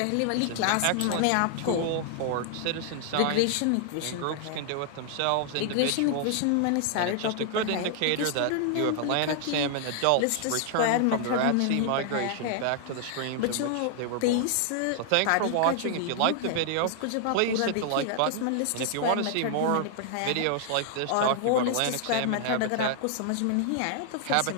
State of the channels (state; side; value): different; both; correlation 0.00